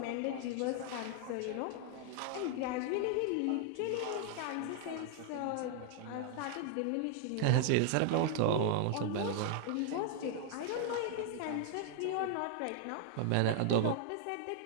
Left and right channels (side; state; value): both; different; correlation 0.00